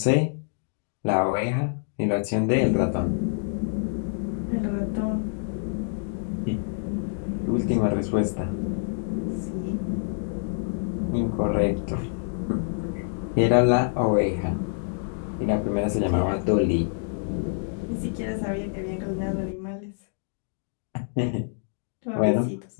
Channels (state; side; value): silent; right; digital silence